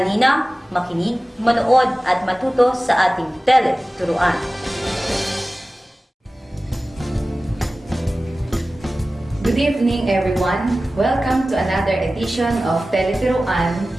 makinig, manood at matuto sa ating Tele-Turuan. Good evening, everyone. Welcome to another edition of Tele-Turuan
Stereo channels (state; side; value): normal; both; correlation 0.96